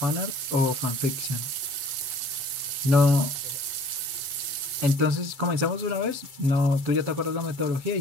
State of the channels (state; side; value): late; left; 7.8 ms